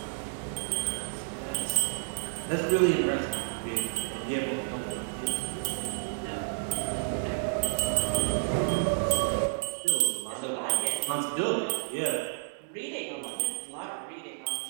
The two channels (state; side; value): silent; left; digital silence